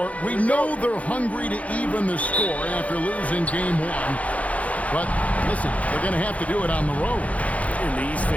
We know they're hungry to even the score after losing Game 1. But listen, they're going to have to do it on the road. And these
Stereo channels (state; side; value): late; right; 0.067 ms